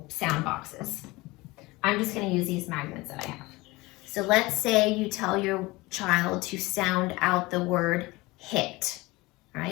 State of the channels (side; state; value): right; quieter; 21.9 dB